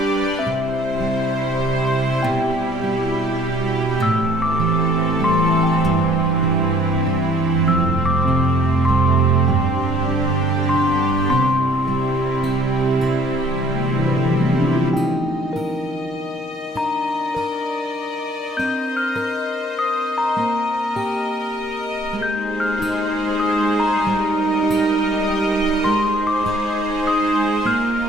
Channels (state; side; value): normal; both; correlation 0.59